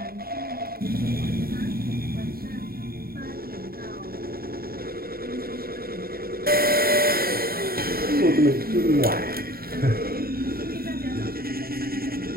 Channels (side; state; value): left; late; 0.43 ms